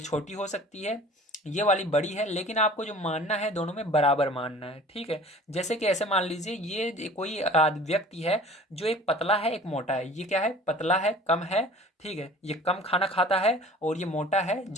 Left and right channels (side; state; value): both; normal; correlation 0.46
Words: छोटी हो सकती है, ये वाली बड़ी है, लेकिन आपको जो मानना है दोनों में बराबर मानना है। ठीक है, जैसे कि ऐसे मान लीजिए ये कोई व्यक्ति है जो एक पतला है एक मोटा है, ये क्या है, पतला है कम है। ठीक है, ये कम खाना खाता है और ये मोटा है